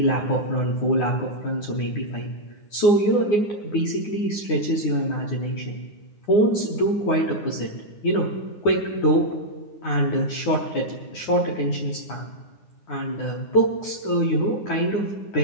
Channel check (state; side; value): late; right; 9.7 ms